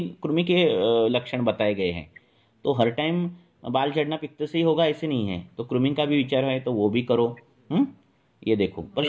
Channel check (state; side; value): identical; both; correlation 1.00